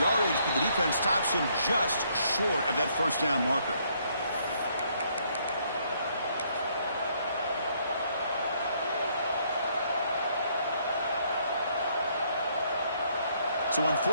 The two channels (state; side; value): inverted; both; correlation -0.69